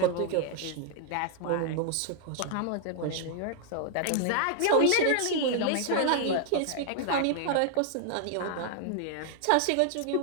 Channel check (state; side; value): different; both; correlation 0.00